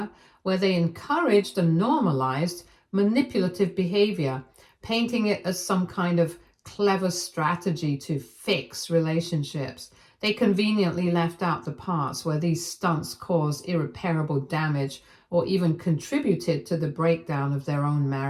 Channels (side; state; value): both; identical; correlation 1.00